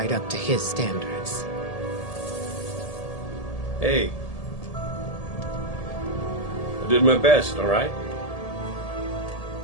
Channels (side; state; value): right; late; 1.8 ms